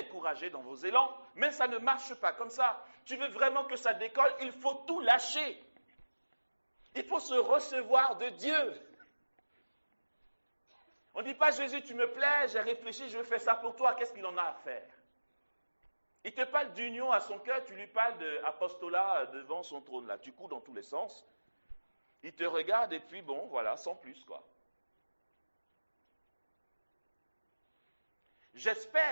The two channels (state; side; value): inverted; both; correlation -1.00